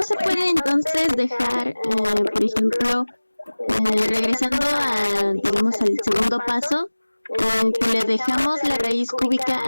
se puede entonces dejar, por ejemplo, regresando a, digamos, al segundo paso, que le dejamos la raíz cúbica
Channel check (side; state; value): both; inverted; correlation -1.00